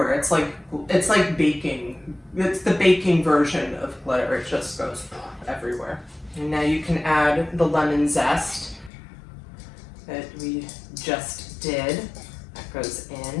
It's like baking. It's the baking version of glitter. It just goes everywhere. And now you can add the lemon zest that we just did. That goes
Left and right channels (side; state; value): right; drops out; at 8.9 s